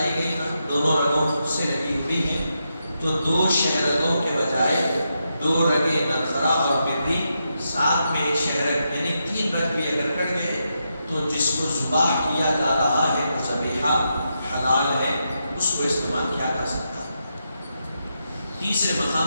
گئی نا، دونوں رگوں سے لگی ہوئی ہیں، تو 2 شہرگوں کے بجائے 2 رگیں نرخرا اور مری، ساتھ میں ایک شہرگ یعنی 3 رگ بھی اگر کٹ گئے تو جس کو ذبح کیا جا رہا ہے ذبیحہ حلال ہے، اس کو استعمال کیا جا سکتا ہے. تیسرے مقام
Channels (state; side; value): inverted; both; correlation -0.84